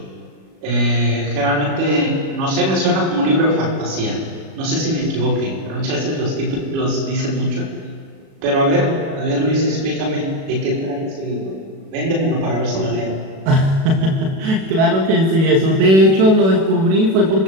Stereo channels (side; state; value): left; late; 37 ms